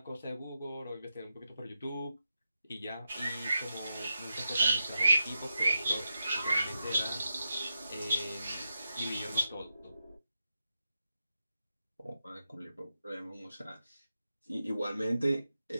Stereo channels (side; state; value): both; inverted; correlation -0.87